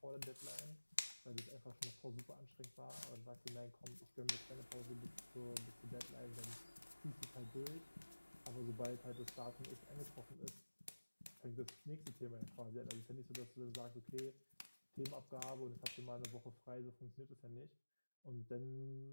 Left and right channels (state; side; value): inverted; both; correlation -1.00